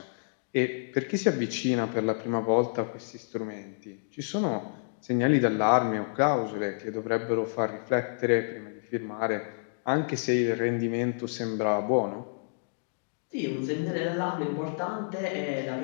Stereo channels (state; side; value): silent; right; digital silence